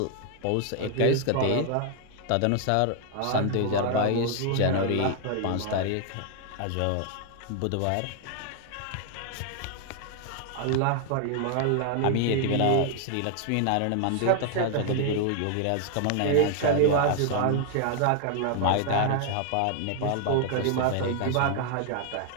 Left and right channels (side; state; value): both; different; correlation 0.00